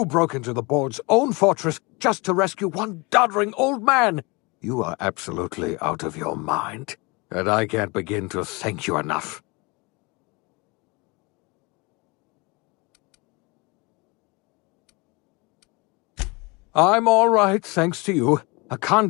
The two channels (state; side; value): quieter; right; 27.1 dB